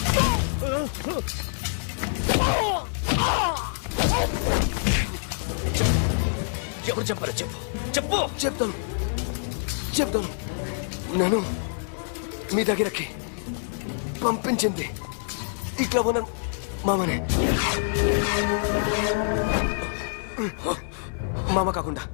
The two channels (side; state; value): right; silent; 58 dB below the other